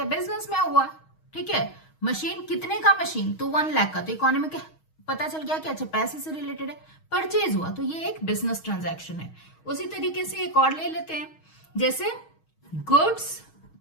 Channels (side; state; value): right; late; 6.3 ms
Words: बिजनेस में हुआ। ठीक है, मशीन कितने का? मशीन तो 1 लाख का, तो इकोनॉमिक पता चल गया कि अच्छा पैसे से रिलेटेड है, परचेज हुआ, तो ये एक बिजनेस ट्रांजैक्शन है। उसी तरीके से एक और ले लेते हैं, जैसे goods